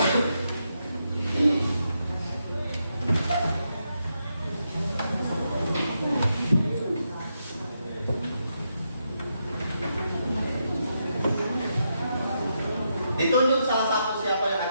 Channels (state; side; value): inverted; both; correlation -0.83